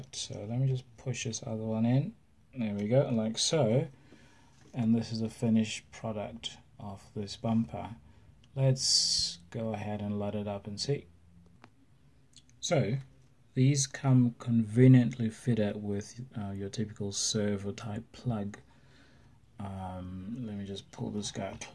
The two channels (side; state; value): both; identical; correlation 1.00